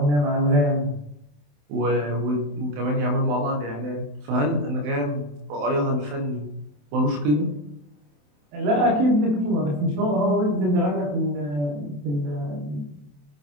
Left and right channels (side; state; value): left; late; 27 ms